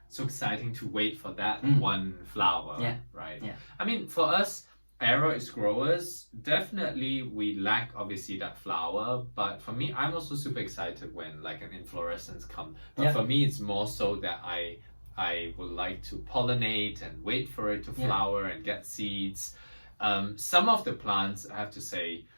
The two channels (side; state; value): both; inverted; correlation -1.00